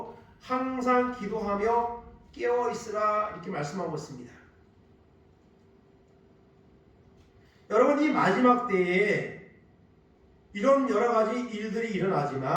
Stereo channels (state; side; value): identical; both; correlation 1.00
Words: 항상 기도하며 깨어있으라 이렇게 말씀하고 있습니다. 여러분, 이 마지막 때에 이런 여러가지 일들이